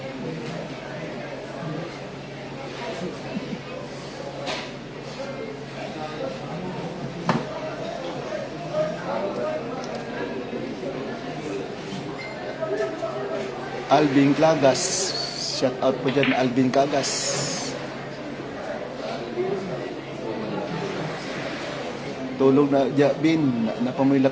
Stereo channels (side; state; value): both; identical; correlation 1.00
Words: Alvin Clagas. Shout out po dyan, Alvin Clagas. Tulog na Jabin, napamila